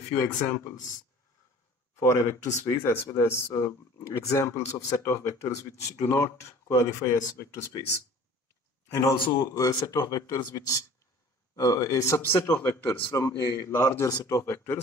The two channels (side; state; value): both; normal; correlation 0.47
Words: examples for a vector space as well as examples of set of vectors which do not qualify as vector space. And also a set of vectors which a subset of vectors from a larger set of